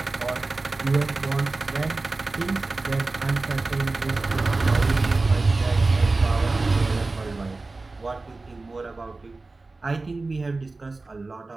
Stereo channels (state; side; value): quieter; left; 3.5 dB